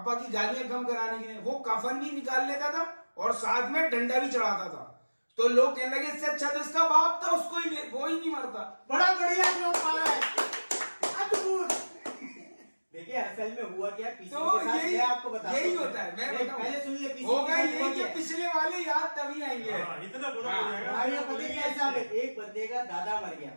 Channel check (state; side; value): inverted; both; correlation -1.00